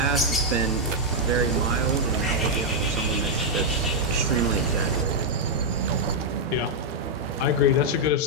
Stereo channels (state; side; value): normal; both; correlation -0.03